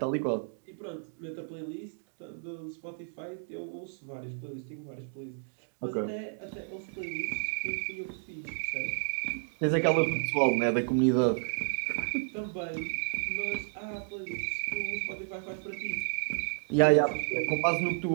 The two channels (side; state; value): left; silent; digital silence